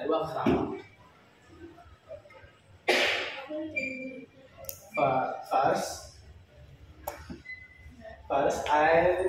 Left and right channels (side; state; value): both; identical; correlation 1.00